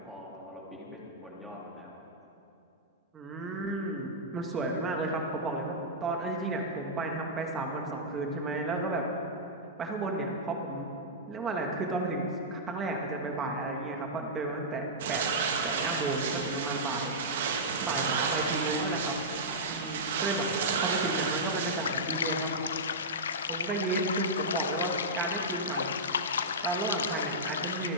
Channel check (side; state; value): both; normal; correlation -0.12